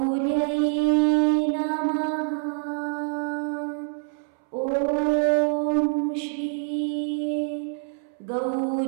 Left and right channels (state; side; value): silent; left; 61 dB below the other